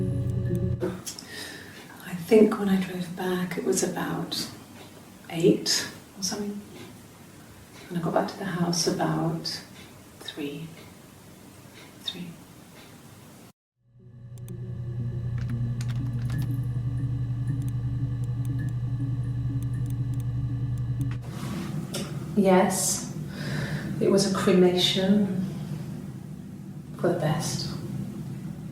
I think when I drove back it was about 8 or something, and I got back to the house about 3. Yes, it was a cremation for the best.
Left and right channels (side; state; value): both; identical; correlation 1.00